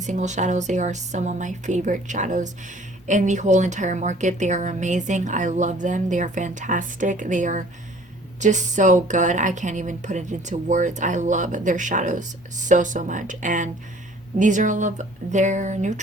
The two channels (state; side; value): normal; both; correlation 0.53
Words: single shadows. They are some of my favorite shadows in the whole entire market. They are amazing. I love them. They are fantastic. They are just so good. I can't even put it into words. I love their shadows so much, and these are all of their